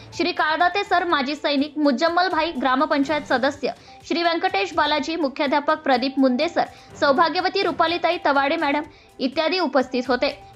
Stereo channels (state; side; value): identical; both; correlation 1.00